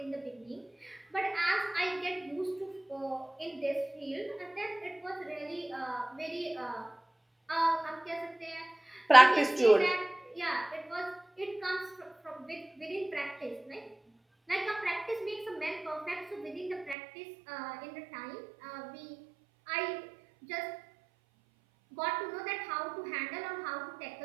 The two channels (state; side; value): drops out; left; at 16.9 s